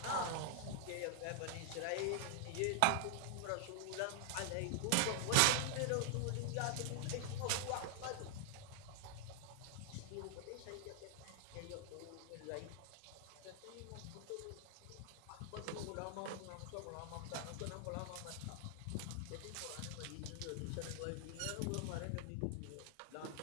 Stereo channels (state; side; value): different; both; correlation 0.00